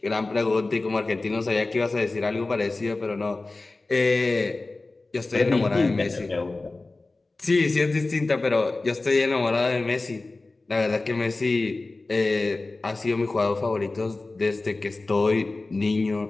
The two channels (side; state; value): right; quieter; 3.3 dB